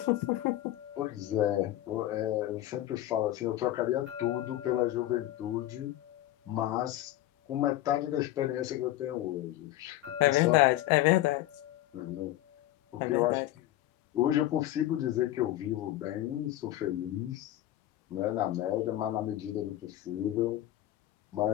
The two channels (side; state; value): right; quieter; 14.4 dB